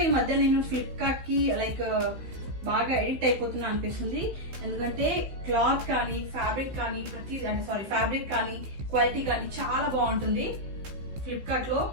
ఈ మధ్య నేను ఫ్లిప్కార్ట్ కి లైక్ బాగా ఎడిక్ట్ అయిపోతున్నా అనిపిస్తుంది. ఎందుకంటే క్లాత్ కానీ ఫ్యాబ్రిక్ కానీ ఫ్యాబ్రిక్ కానీ క్వాలిటీ కానీ చాలా బాగుంటుంది ఫ్లిప్కార్ట్ లో.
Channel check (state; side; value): late; left; 15 ms